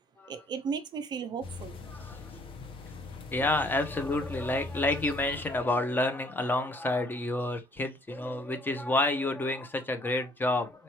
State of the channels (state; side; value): normal; both; correlation 0.61